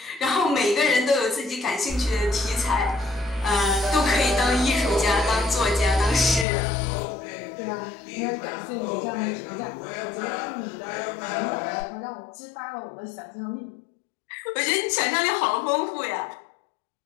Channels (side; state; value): right; drops out; at 6.5 s